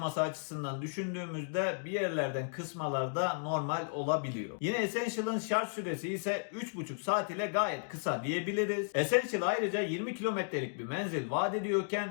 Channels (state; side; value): silent; right; digital silence